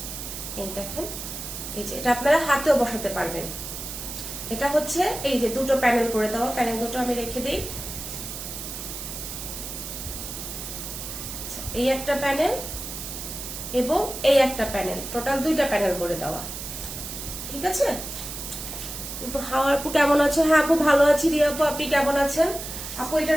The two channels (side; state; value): right; noise; hiss, 8 dB below the sound